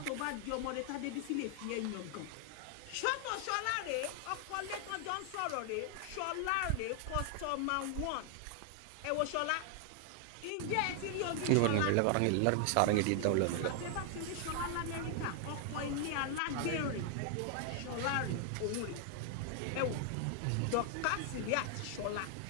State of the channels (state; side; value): different; both; correlation 0.00